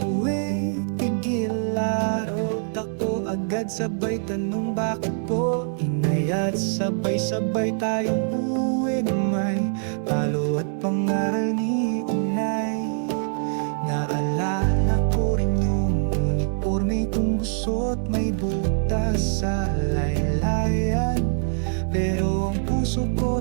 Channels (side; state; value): left; silent; digital silence